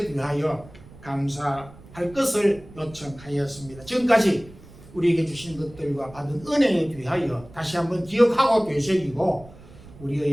대하여 감사할 것을 요청하였습니다. 지금까지 우리에게 주신 것들과 받은 은혜에 대하여 다시 한번 기억하고 되새기고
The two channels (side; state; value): right; noise; rumble, 20 dB below the sound